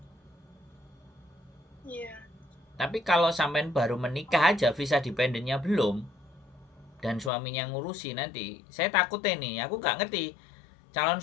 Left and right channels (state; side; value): drops out; right; at 7.3 s